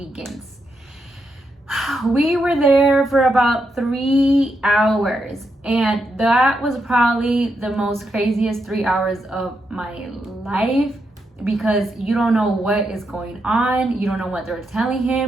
We were there for about 3 hours, and that was probably the most craziest 3 hours of my life, because you don't know what is going on, you don't know what they're telling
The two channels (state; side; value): normal; both; correlation 0.83